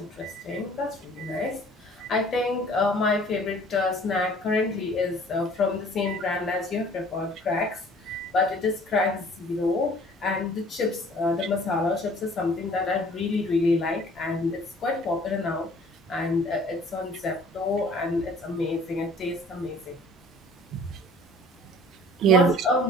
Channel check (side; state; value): both; normal; correlation 0.52